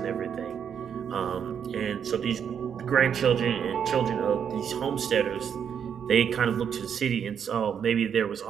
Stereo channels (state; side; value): quieter; left; 7.9 dB